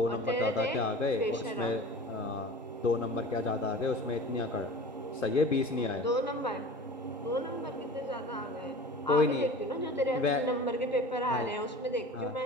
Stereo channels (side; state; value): both; normal; correlation 0.38